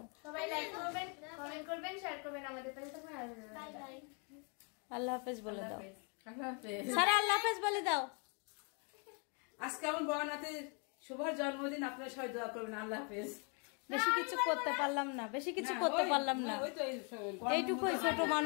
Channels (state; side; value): quieter; right; 37.0 dB